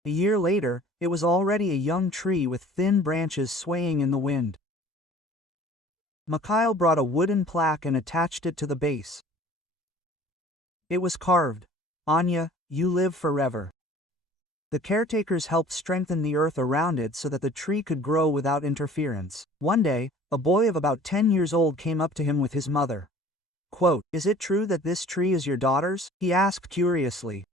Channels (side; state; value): both; normal; correlation 0.48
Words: A year later, it was already a young tree with thin branches swaying in the wind. Mikhail brought a wooden plaque and attached it to the base. It was carved, "Anya, you live forever." The caretakers helped strengthen the earth around it so that the tree could grow without interference. One day, a boy of about 10 years old came up to him with his mother. Quote, "Is it true that this tree is your daughter's?" he asked curiously.